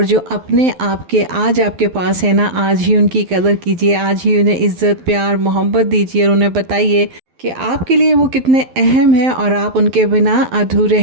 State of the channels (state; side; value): late; left; 12 ms